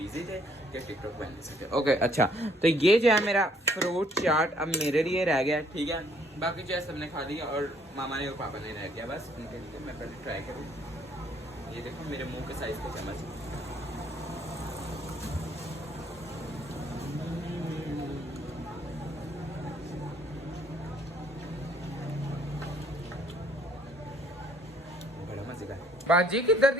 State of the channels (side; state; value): both; normal; correlation 0.64